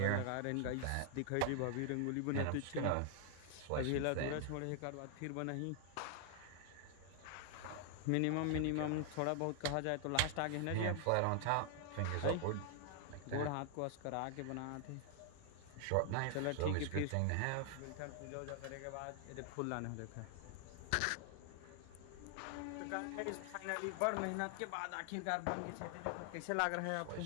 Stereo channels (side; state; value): both; different; correlation 0.00